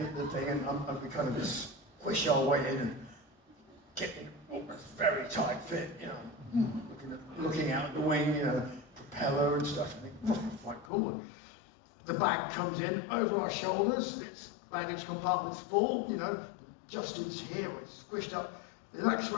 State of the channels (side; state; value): right; drops out; at 10.9 s